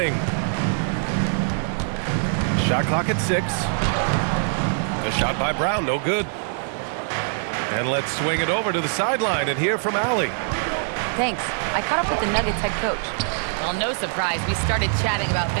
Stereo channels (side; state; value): left; silent; digital silence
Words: Shot clock at 6. A shot by Brown, no good. And let's swing it over to the sideline and hear from Allie. Thanks. I caught up with the Nuggets head coach. Well, no surprise. We started chatting about